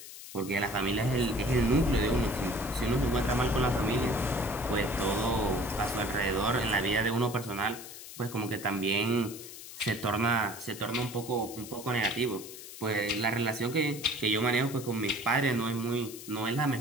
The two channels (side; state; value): left; noise; hiss, 13 dB below the sound